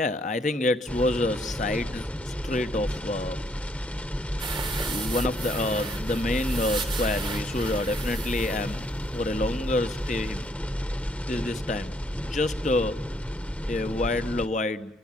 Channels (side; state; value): both; normal; correlation 0.69